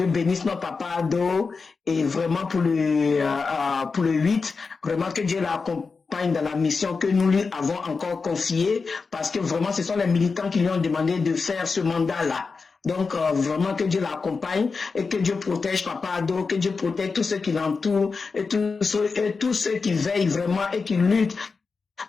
bénisse nos papas Ado, et vraiment pour le 8, vraiment que Dieu l'accompagne dans la mission que nous lui avons encore confiée, parce que vraiment ce sont les militants qui lui ont demandé de faire ce mandat-là. Donc vraiment que Dieu l'accompagne et que Dieu protège Papa Ado, que Dieu protège tous ceux qui l'entourent et tous ceux qui veillent vraiment et qui luttent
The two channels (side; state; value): right; quieter; 4.6 dB